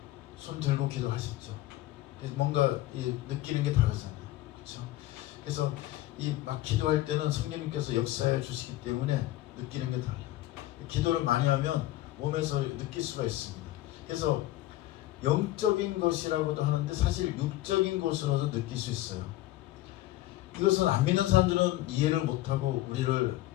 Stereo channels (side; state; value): right; quieter; 15.9 dB